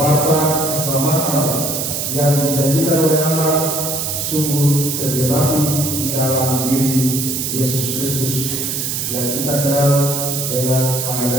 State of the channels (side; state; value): right; noise; hiss, 2 dB below the sound